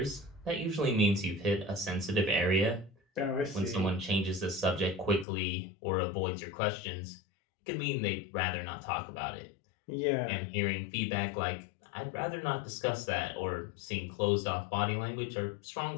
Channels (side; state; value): right; drops out; at 5.2 s